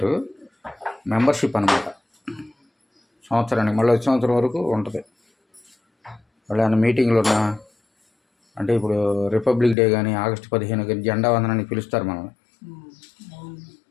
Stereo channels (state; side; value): drops out; right; at 9.8 s